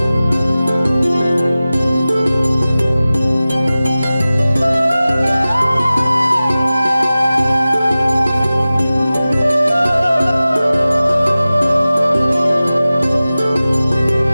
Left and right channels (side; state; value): both; inverted; correlation -0.96